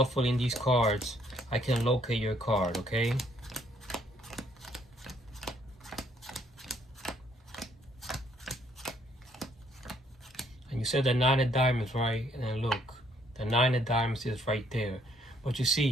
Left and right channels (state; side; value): normal; both; correlation 0.67